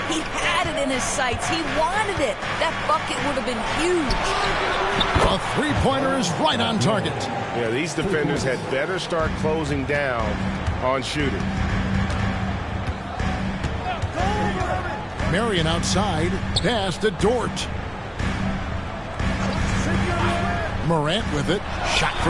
he had it in his sights. He wanted it. That bucket would have been huge. A three-pointer is right on target. Yeah, these defenders had better start closing down on shooting. Marion outside. Pass to Dort. Morant with it. Shot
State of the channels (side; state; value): both; identical; correlation 1.00